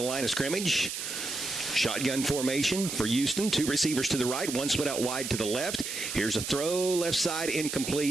line of scrimmage. Shotgun formation for Houston. 2 receivers to the right, 1 split out wide to the left. Here's a throw, left side,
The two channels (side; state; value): right; noise; hiss, 5 dB below the sound